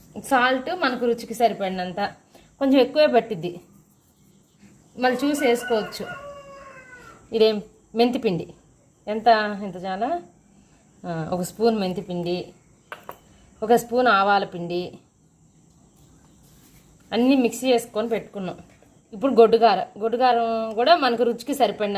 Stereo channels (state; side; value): identical; both; correlation 1.00